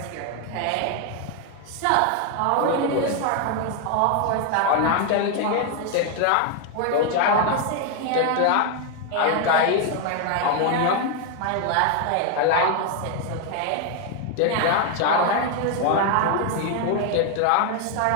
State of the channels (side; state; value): both; different; correlation 0.01